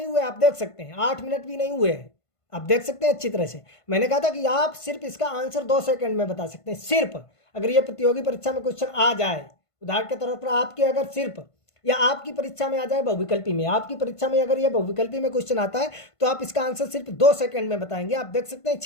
हुए, आप देख सकते हैं 8 मिनट भी नहीं हुए हैं, आप देख सकते हैं अच्छी तरह से। मैंने कहा था कि आप सिर्फ इसका आंसर 2 सेकंड में बता सकते हैं, सिर्फ अगर ये प्रतियोगी परीक्षा में क्वेश्चन आ जाए, उदाहरण के तौर पर आपके अगर सिर्फ या आपकी परीक्षा में आ जाए बहुविकल्पी में, आपकी परीक्षा में अगर ये बहुविकल्पी में क्वेश्चन आता है तो आप इसका आंसर सिर्फ 2 सेकंड में बताएंगे। आप देख सकते हैं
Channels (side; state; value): right; late; 1.5 ms